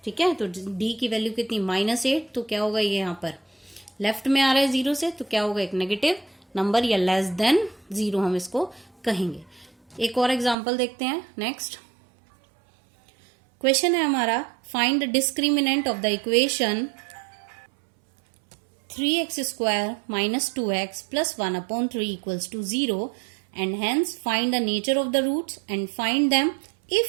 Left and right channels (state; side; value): drops out; left; at 10.6 s